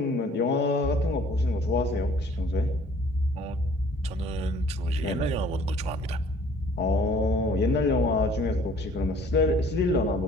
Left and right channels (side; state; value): both; normal; correlation 0.54